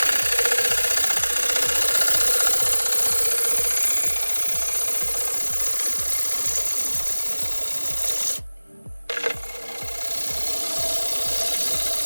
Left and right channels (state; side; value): inverted; both; correlation -1.00